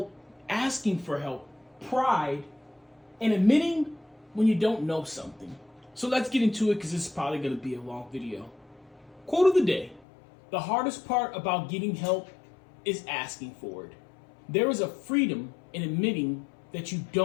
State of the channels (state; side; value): drops out; right; at 10.1 s